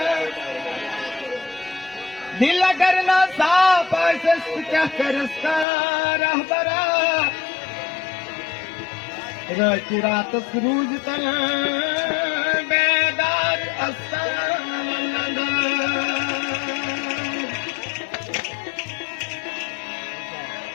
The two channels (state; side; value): drops out; right; at 5.7 s